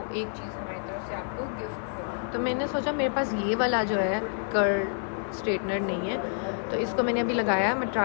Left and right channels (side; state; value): right; silent; digital silence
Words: एक चीज़ हमारी तरफ से आपको गिफ्ट होगी। तो मैंने सोचा मेरे पास ये वाला जो है कर्ल स्ट्रेटनर नहीं है, तो इसको मैंने अभी लगाया, मैं